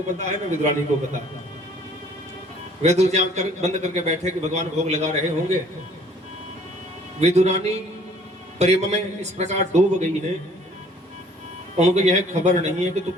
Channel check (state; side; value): normal; both; correlation 0.57